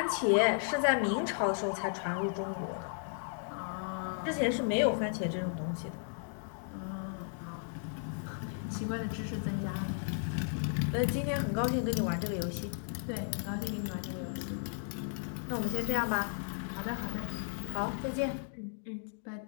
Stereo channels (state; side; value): silent; right; 55 dB below the other